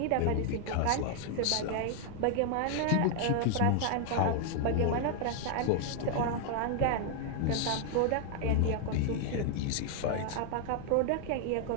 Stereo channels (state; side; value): different; both; correlation 0.00